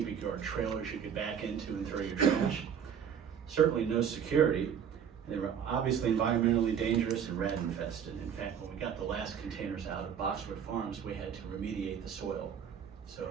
yard trailers you could back into and throw your trash. Certainly no security. They were obviously environmentally dangerous and rat infested. In fact, when we got the last containers out of Boxwood Farms, we had to remediate the soil. So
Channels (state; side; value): quieter; left; 8.1 dB